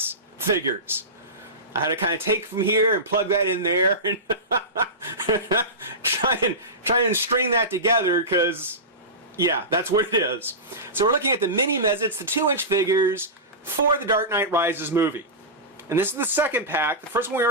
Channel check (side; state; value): both; normal; correlation -0.18